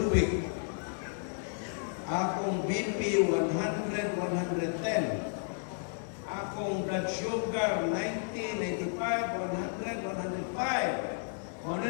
week, akong BP 100, 110. Akong blood sugar 90, 95, 100, 105. Kung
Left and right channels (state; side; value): silent; right; 56 dB below the other